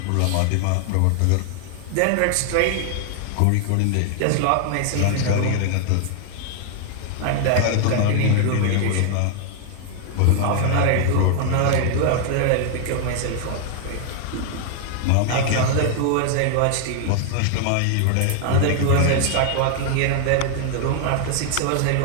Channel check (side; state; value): both; different; correlation 0.00